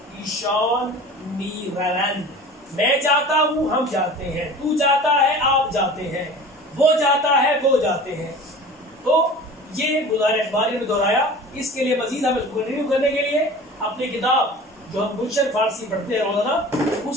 ईशान मी रवंद। मैं जाता हूं, हम जाते हैं, तू जाता है, आप जाते हैं, वो जाता है, वो जाते हैं। तो ये मुजारे अखबारी में दोहराया। इसके लिए मजीद हम इसको कंटिन्यू करने के लिए अपनी किताब जो हम गुलशन फारसी पढ़ते हैं रोजाना,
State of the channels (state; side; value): normal; both; correlation 0.40